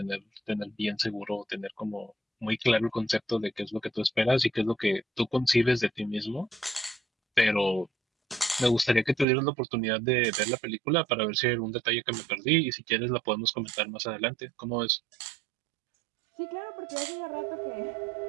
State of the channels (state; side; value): drops out; left; at 9.2 s